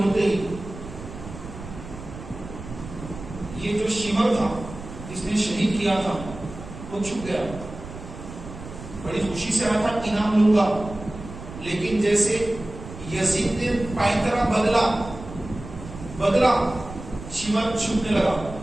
ہی یہ جو شمر تھا جس نے شہید کیا تھا وہ چھپ گیا، بڑی خوشی سے آیا تھا انعام لوں گا، لیکن جیسے یزید نے پائنترا بدلا شمر چھپنے لگا،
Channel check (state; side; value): noise; right; rumble, 13 dB below the sound